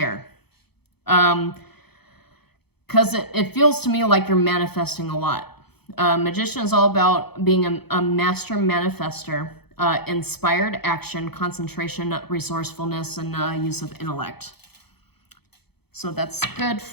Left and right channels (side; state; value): right; late; 0.97 ms